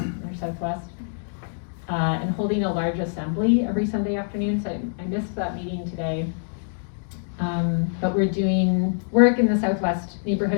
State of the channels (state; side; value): silent; right; digital silence